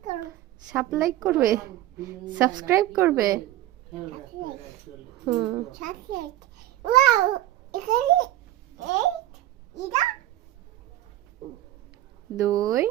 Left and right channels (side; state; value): left; quieter; 14.5 dB